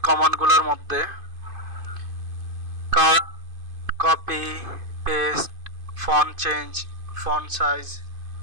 কমান্ডগুলোর মধ্যে cut, copy, paste, font change, font size,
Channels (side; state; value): left; late; 2.5 ms